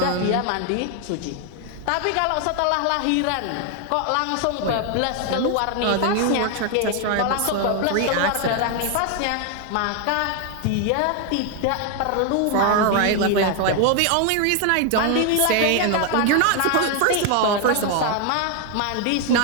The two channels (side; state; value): both; different; correlation 0.01